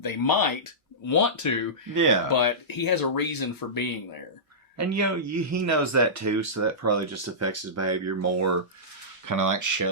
might want to, yeah, but he has a reason for being there. And he knows that too, so that probably just affects his behavior more. Kind of like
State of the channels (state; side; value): normal; both; correlation -0.18